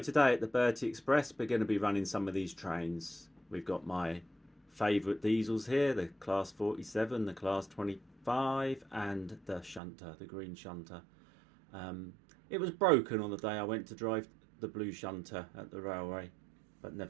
at the Bertie Express we're going to be running some of these trains. We've got my favourite diesels here, the Class 47, the Class 25 and the Shunter, the green Shunter. It was broken on the day I went to drive the blue Shunter at the railway, but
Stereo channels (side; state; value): left; drops out; at 9.8 s